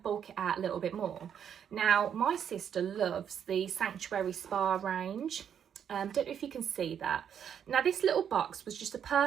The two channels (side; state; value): left; quieter; 8.5 dB